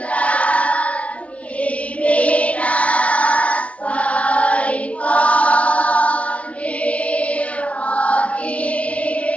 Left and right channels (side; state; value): right; late; 0.064 ms